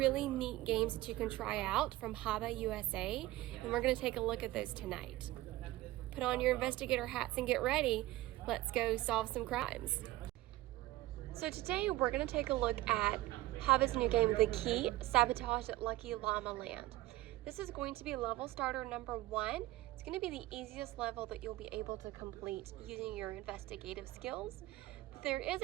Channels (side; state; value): left; quieter; 17.3 dB